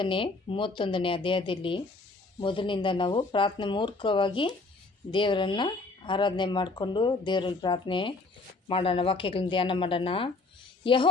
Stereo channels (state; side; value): quieter; right; 3.5 dB